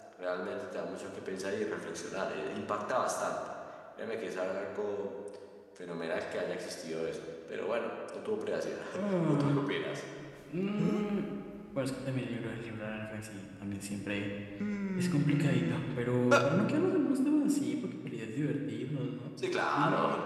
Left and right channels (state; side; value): identical; both; correlation 1.00